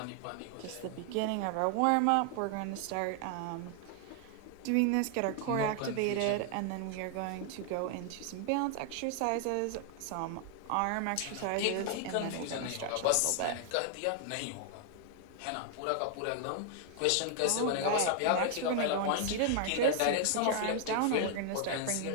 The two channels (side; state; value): both; different; correlation 0.00